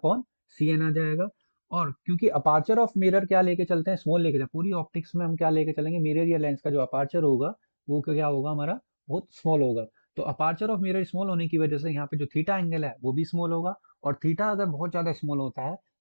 C N आ जाएगा। और क्योंकि अपार्चर ऑफ मिरर क्या लेके चलते हैं? स्मॉल लेके चलते, पूरी ऑप्टिक्स में हम क्या लेके चलेंगे? मिरर या लेंस का जो अपार्चर होगा वो क्या होगा? हमारा बहुत स्मॉल होगा। तो अपार्चर ऑफ मिरर स्मॉल होने की वजह से यहाँ पे जो थीटा एंगल है वो भी स्मॉल होगा। और थीटा अगर बहुत ज्यादा स्मॉल होता है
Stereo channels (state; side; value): inverted; both; correlation -1.00